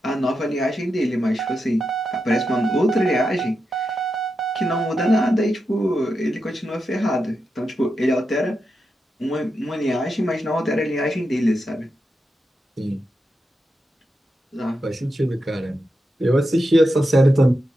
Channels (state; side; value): normal; both; correlation 0.87